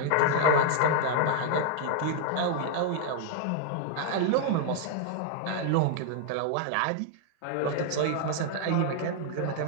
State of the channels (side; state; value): both; different; correlation 0.00